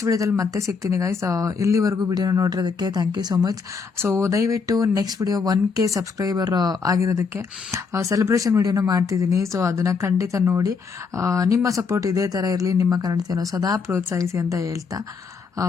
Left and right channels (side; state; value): right; quieter; 5.2 dB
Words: ವಿಡಿಯೋದಲ್ಲಿ ಮತ್ತೆ ಸಿಗ್ತೀನಿ ಗೈಸ್. ಇಲ್ಲಿವರೆಗೂ ವಿಡಿಯೋನ ನೋಡಿರೋದಕ್ಕೆ thank you so much. So ದಯವಿಟ್ಟು ನೆಕ್ಸ್ಟ್ ವಿಡಿಯೋ 1K ಸಬ್ಸ್ಕ್ರೈಬರ್ ಆಗಿರೋದಕ್ಕೆ ಸೆಲೆಬ್ರೇಷನ್ ವಿಡಿಯೋನ ಮಾಡ್ತಿದ್ದೀನಿ. ಸೊ ಅದನ್ನು ಖಂಡಿತ ನೋಡಿ ನಿಮ್ಮ ಸಪೋರ್ಟ್ ಇದೇ ಥರ ಇರಲಿ. ನಿಮ್ಮ ಕನ್ನಡತೆಯನ್ನು ಸದಾ ಪ್ರೋತ್ಸಾಹಿಸಿ ಅಂತ ಹೇಳ್ತಾ